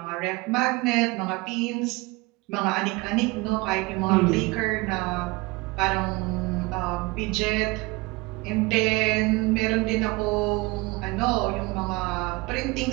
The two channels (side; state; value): left; quieter; 23.8 dB